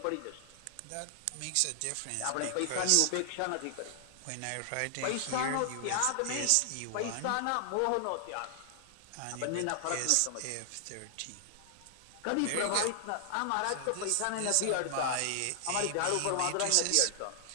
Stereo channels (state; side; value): different; both; correlation 0.00